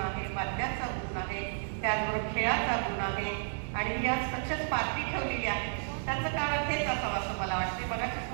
आहे, वाद्याचा गुण आहे, त्याचबरोबर खेळाचा गुण आहे आणि या सक्सेस पार्टी ठेवलेली आहे. त्याचं कारण हेच असावं असं मला वाटते. मगाशीच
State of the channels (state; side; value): silent; left; digital silence